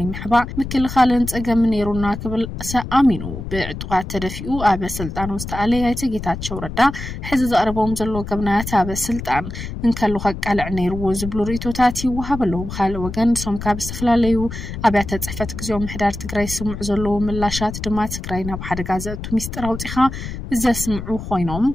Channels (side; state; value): left; noise; rumble, 8 dB below the sound